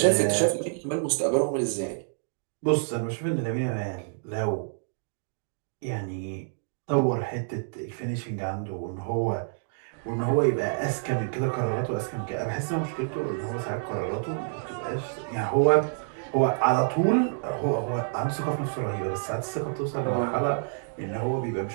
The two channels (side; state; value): left; silent; digital silence